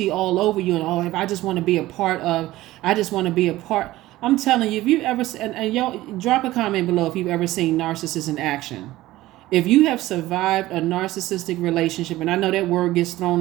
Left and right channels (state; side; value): quieter; left; 16.7 dB